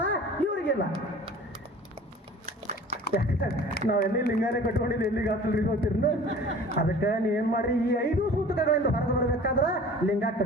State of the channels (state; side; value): normal; both; correlation 0.45